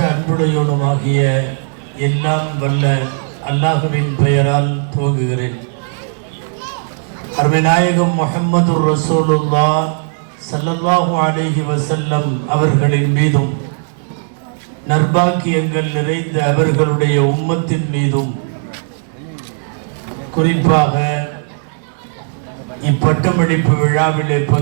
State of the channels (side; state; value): left; silent; digital silence